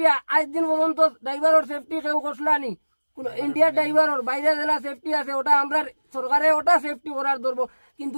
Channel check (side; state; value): both; inverted; correlation -1.00